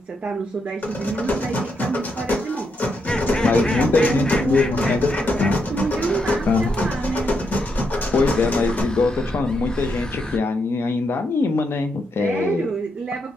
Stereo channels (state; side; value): normal; both; correlation 0.80